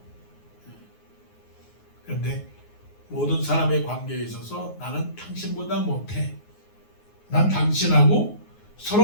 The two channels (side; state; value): right; late; 9.5 ms